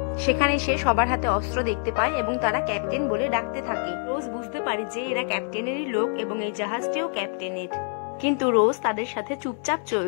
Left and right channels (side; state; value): right; silent; 56 dB below the other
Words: সেখানে সে সবার হাতে অস্ত্র দেখতে পায় এবং তারা ক্যাপ্টেন বলে ডাকতে থাকে। রোজ বুঝতে পারে যে এরা ক্যাপ্টেনেরই লোক এবং এই জাহাজটিও ক্যাপ্টেনের। কিন্তু রোজ তাদের সাথে চুপচাপ